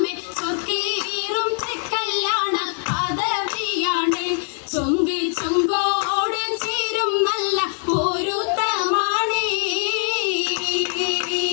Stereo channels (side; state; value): right; silent; 56 dB below the other